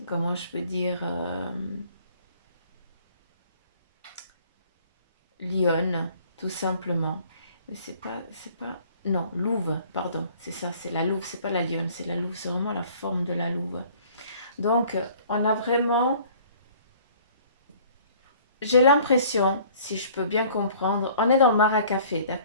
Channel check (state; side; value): inverted; both; correlation -0.53